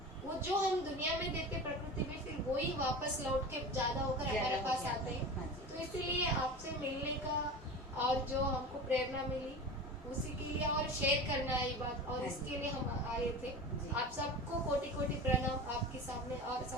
वो जो हम दुनिया में देते प्रकृति में, फिर वही वापस लौट के ज्यादा होकर हमारे पास आते हैं। तो इसीलिए आपसे मिलने का और जो हमको प्रेरणा मिली उसी के लिए, और शेयर करना है ये बात, और इसके लिए हम आए थे। आप सबको कोटि कोटि प्रणाम आपके सामने, और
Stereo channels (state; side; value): normal; both; correlation 0.31